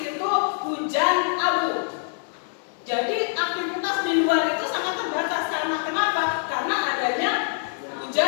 hujan abu. Jadi aktivitas di luar itu sangat terbatas karena kenapa? Karena adanya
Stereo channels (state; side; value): silent; right; 62 dB below the other